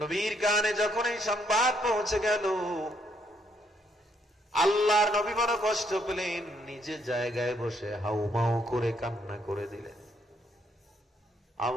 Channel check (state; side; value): normal; both; correlation 0.72